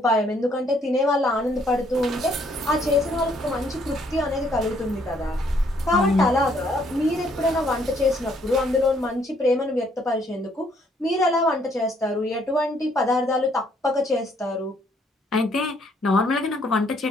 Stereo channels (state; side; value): normal; both; correlation 0.67